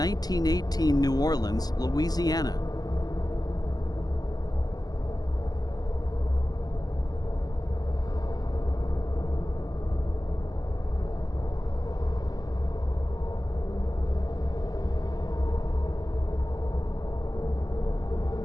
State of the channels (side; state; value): right; late; 0.19 ms